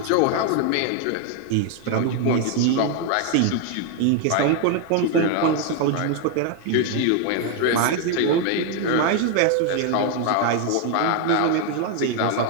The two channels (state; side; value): different; both; correlation 0.01